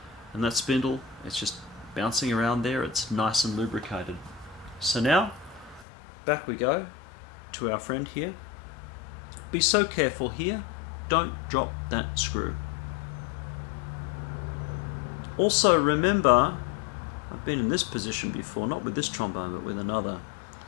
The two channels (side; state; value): right; drops out; at 5.9 s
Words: and that spindle, it's just bouncing around there. It's nice and lubricated. So now, back we go to our friend here. Be so careful here, don't drop that screw. Also remember, I've been in this position before, not with this trombone but with another.